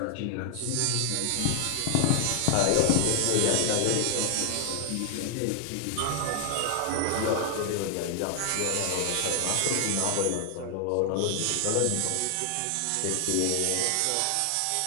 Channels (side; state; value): both; different; correlation 0.00